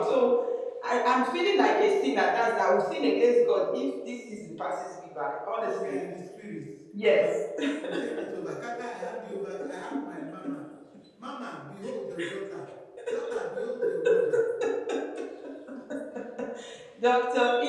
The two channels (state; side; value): identical; both; correlation 1.00